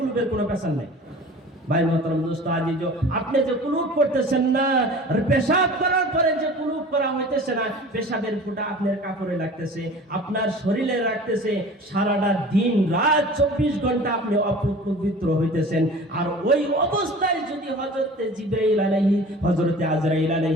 কোনো পেশাব নাই। ভাই মোহতারাম দোস্ত আজিজ, আপনি যে কুলুপ করতেছেন না, পেশাব করার পরে যে কুলুপ করা হইতেছে না, পেশাবের ফুটা আপনার কাপড়ে লাগতেছে, আপনার শরীরে লাগতেছে, সারাটা দিন রাত 24 ঘন্টা আপনি অপবিত্র হইতেছেন। আর ওই অবস্থায় যদি হযরতে জিবরাইল আলাইহি, হযরতে আজরাইল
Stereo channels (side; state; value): both; normal; correlation 0.41